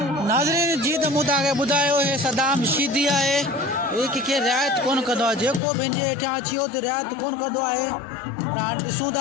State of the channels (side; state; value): right; drops out; at 5.6 s